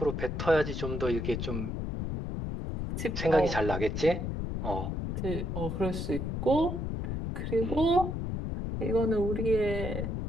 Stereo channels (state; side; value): noise; left; rumble, 3 dB below the sound